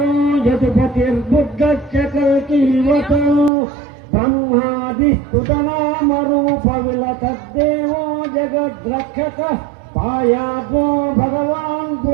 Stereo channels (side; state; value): left; drops out; at 3.5 s